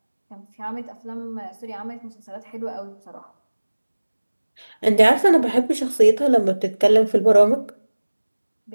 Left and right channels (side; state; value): both; inverted; correlation -1.00